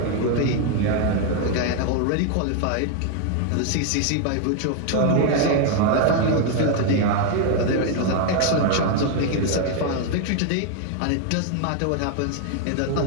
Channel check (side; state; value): both; different; correlation 0.01